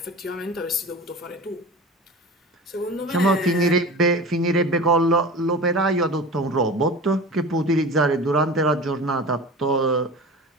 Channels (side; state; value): both; normal; correlation 0.34